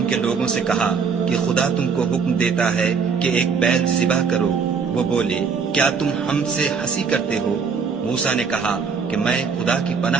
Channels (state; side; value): quieter; left; 5.7 dB